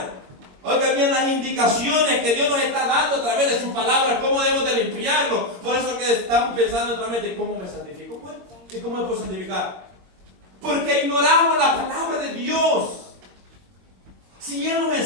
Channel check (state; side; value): late; left; 22 ms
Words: oiga bien, las indicaciones que Dios nos está dando a través de su palabra, cómo debemos de limpiarlo. Por eso que estamos pensando en otra mente, ¿cómo me santifico? Pues, ¿y cómo me puedo santificar? Porque ignoramos la palabra de Dios. Si Él nos